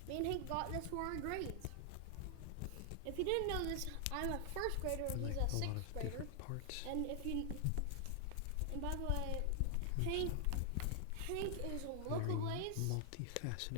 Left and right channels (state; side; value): different; both; correlation 0.00